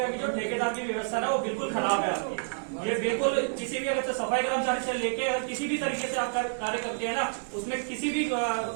की जो ठेकेदार की व्यवस्था है वो बिल्कुल खराब है आपकी। ये बिल्कुल किसी भी अगर सफाई कर्मचारी से लेके अगर किसी भी तरीके से आप कार्य करते हैं ना, उसमें किसी भी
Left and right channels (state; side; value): silent; left; 59 dB below the other